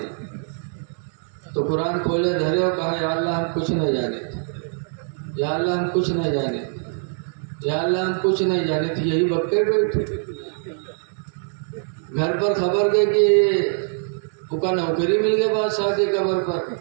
تو قرآن کھولے دھرے اور کہا یا اللہ ہم کچھ نہیں جانے تھے، یا اللہ ہم کچھ نہیں جانے تھے، یا اللہ ہم کچھ نہیں جانے تھے، یہی بکے بیٹھے گھر پر خبر دے کہ وہ کا نوکری مل گیا بادشاہ کے قبر پر،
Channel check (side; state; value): left; silent; 63 dB below the other